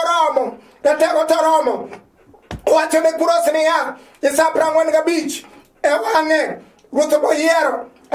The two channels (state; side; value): identical; both; correlation 1.00